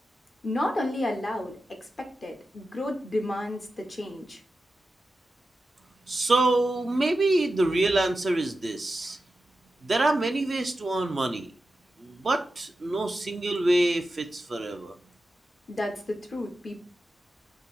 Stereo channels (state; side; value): normal; both; correlation 0.91